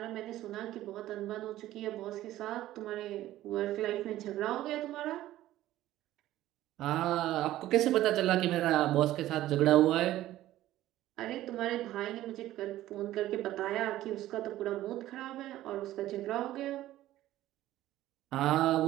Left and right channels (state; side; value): quieter; left; 14.5 dB